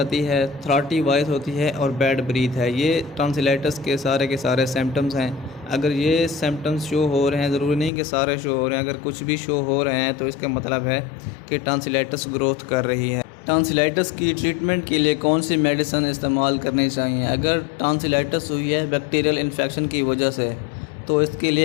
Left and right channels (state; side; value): drops out; right; at 7.9 s